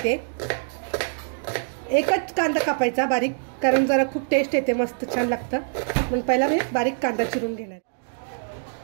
एकच कांदा कापायचा बारीक, कारण जरा खूप टेस्ट येते, मस्त छान लागतं. म्हणून पहिला मी बारीक कांदा चिरून घेणार.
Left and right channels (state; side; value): silent; left; 62 dB below the other